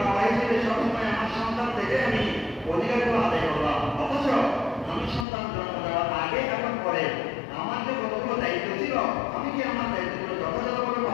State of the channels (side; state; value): right; drops out; at 5.2 s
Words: বাবা হিসেবে সবসময় আমার সন্তান থেকে আমি অধিকারগুলো আদায় করলাম, অথচ আমি সন্তান জন্ম দেওয়ার আগে এবং পরে আমার যে কতগুলো দায়িত্ব ছিল আমি কি আমার দায়িত্বগুলো যথাযথভাবে